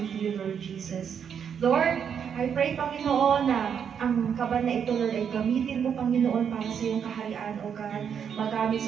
to you, Lord Jesus. Lord, I pray, Panginoon, na ang kaban na ito, Lord, ay gamitin mo, Panginoon, para sa iyong kaharian, O God. Magamit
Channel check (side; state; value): left; quieter; 7.7 dB